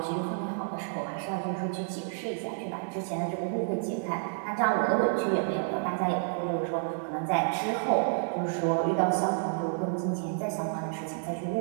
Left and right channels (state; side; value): silent; left; digital silence